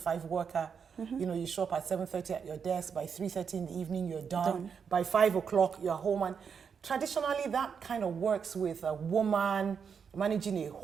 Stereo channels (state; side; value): quieter; left; 6.6 dB